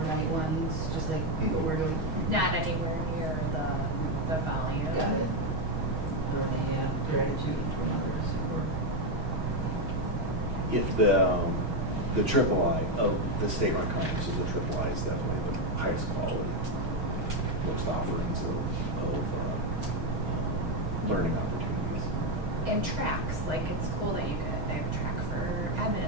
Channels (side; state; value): left; late; 6.4 ms